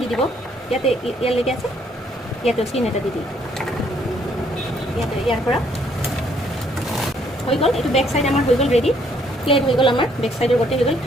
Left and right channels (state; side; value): normal; both; correlation 0.67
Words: দি দিব, ইয়াতে ইয়ালৈকে আছে, ইয়াতে চিন এটা দি দিব, ইয়াতে ইয়াৰ পৰা হৈ গ'ল। এইটো বেক চাইড আমাৰ হৈ গ'ল ৰেডি, প্লেট হৈ গ'ল আমাৰ বেক চাইডৰ গোটেই হৈ গ'ল।